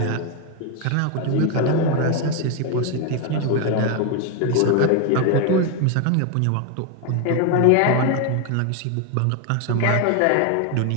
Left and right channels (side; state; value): both; different; correlation 0.01